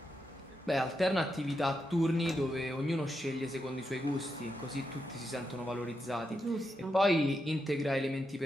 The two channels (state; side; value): normal; both; correlation 0.85